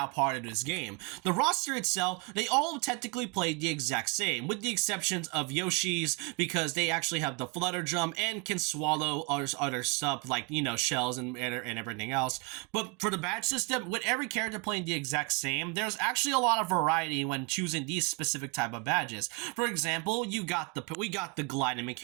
part of this game. The roster itself, they all technically play the exact same, with the exceptions of Yoshi's, because they actually have the flutter jump and can swallow other stuff like, shells and everything else. But for the badge system, with every character playing the exact same, there's actually a lot of variety when choosing these specific type of badges. For example, we got the gliding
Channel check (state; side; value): quieter; left; 30.7 dB